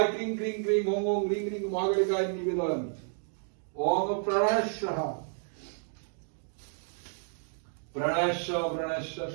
ক্রিং ক্রিং ক্রিং ওং ওং রিং রিং মহাকালিকায় নিবেদন ওং প্রাণায়াঃ প্রাণায়াঃ প্রাণায়াঃ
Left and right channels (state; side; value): silent; left; digital silence